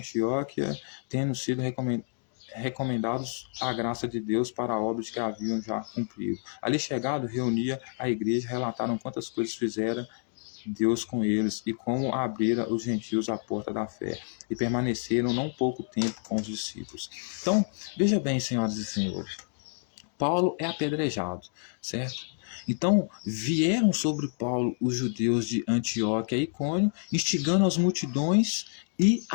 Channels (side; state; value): right; silent; 59 dB below the other